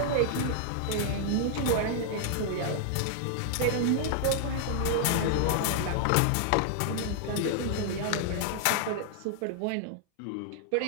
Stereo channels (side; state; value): both; different; correlation -0.01